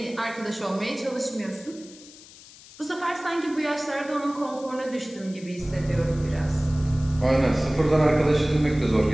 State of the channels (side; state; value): left; noise; hiss, 20 dB below the sound